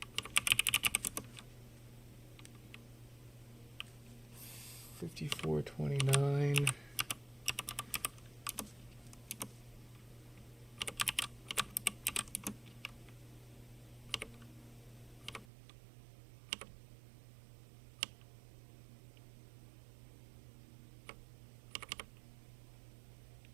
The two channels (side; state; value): left; drops out; at 15.5 s